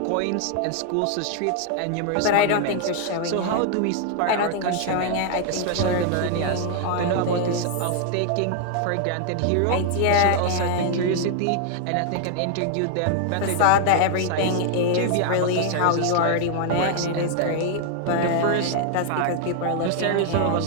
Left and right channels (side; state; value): both; different; correlation 0.00